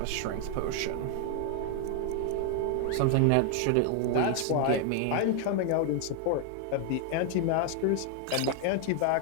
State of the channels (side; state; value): both; different; correlation 0.00